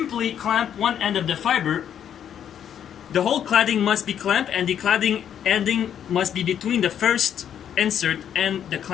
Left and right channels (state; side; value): quieter; right; 9.3 dB